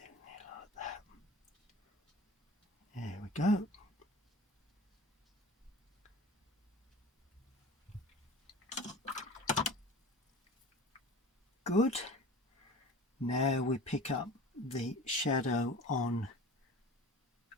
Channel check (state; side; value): normal; both; correlation 0.38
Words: there like that. There we go. Good. Now we pick up the shadow on